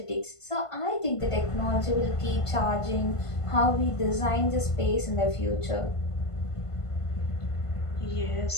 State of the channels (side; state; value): right; late; 1.5 ms